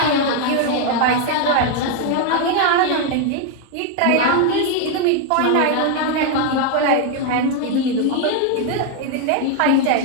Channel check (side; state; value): both; different; correlation 0.01